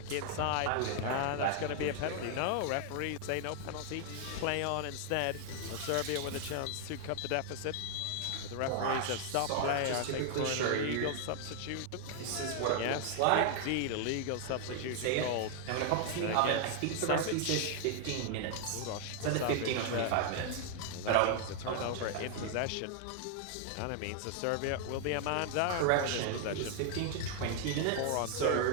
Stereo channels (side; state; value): both; different; correlation 0.00